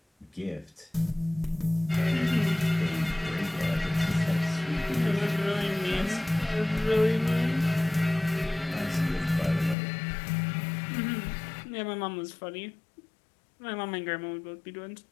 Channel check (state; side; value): drops out; right; at 9.8 s